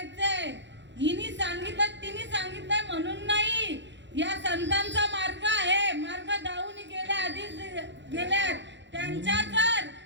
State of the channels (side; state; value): left; late; 0.52 ms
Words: हिनी सांगितलं तिने सांगितलं म्हणून नाही. या संतांचा मार्ग आहे. मार्ग दावून गेल्या आधीच गेल्यात. त्यांच्या तर